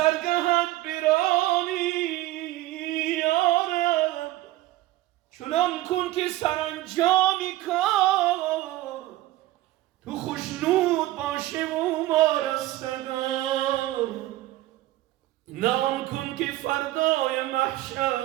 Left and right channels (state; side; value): quieter; left; 16.4 dB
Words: برانی یا رب چنان کن که سرانجامی کار تو خوشنود باشه و ما رستگار نه آن کن که فردای